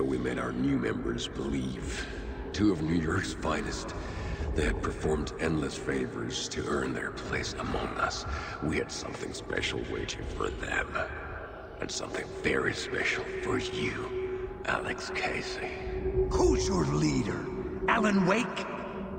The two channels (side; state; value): both; identical; correlation 1.00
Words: we made our new members believe. Two of New York's finest. They had performed endless favors to earn their place among us. We had something special waiting for them. And something very special for you, Alex Casey. Who's your leader? Alan Wake?